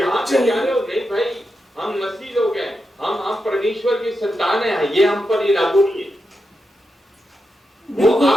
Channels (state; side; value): normal; both; correlation 0.87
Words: पे जा रहे हो। नहीं भाई, हम मसीह लोग हैं, हम परमेश्वर की संतान है, ये हम पर ये लागू नहीं है। वो